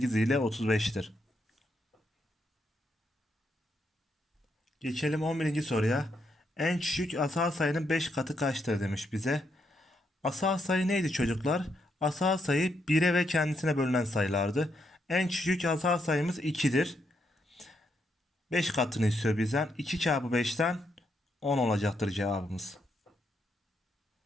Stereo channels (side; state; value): both; normal; correlation 0.79